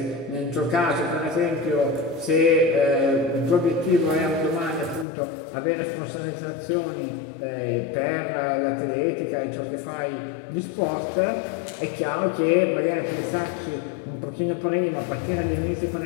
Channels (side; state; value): right; drops out; at 5.1 s